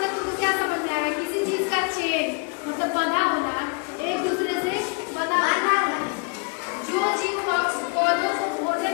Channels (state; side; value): quieter; right; 34.8 dB